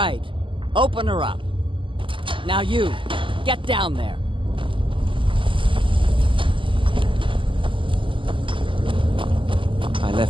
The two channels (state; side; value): late; left; 0.25 ms